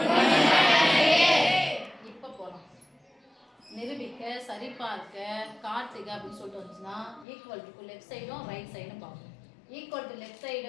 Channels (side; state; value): right; drops out; at 7.2 s